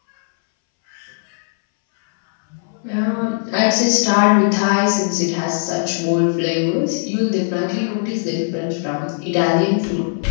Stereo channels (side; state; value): right; silent; 65 dB below the other